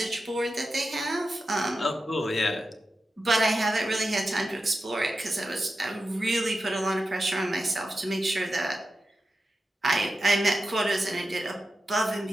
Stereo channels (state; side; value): normal; both; correlation 0.91